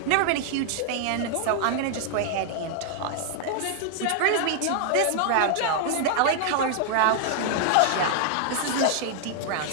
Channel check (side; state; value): both; different; correlation 0.00